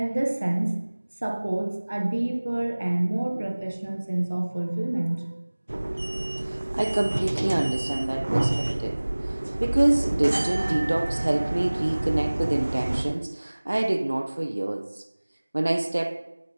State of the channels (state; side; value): inverted; both; correlation -1.00